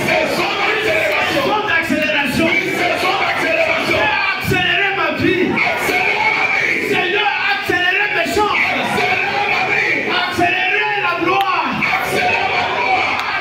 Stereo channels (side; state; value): both; identical; correlation 1.00